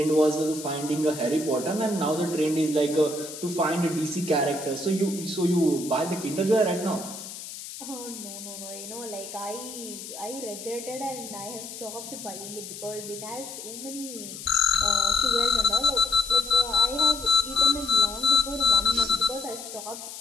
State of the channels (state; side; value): noise; left; hiss, 11 dB below the sound